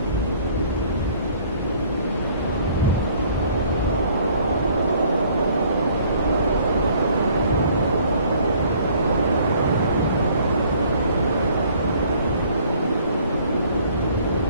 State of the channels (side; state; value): both; inverted; correlation -0.58